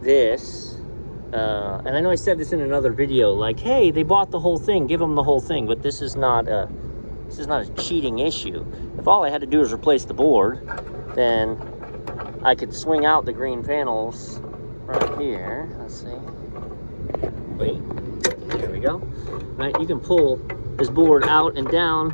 this. And I know I said this in another video, like, hey, they bought the whole thing, give them the whole thing. But this is not a cheating issue. If all I had to do is replace the board, then I could swing out the green panels right here. Let's see. Wait, there we go. Right, you can pull this board out and down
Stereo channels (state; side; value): inverted; both; correlation -1.00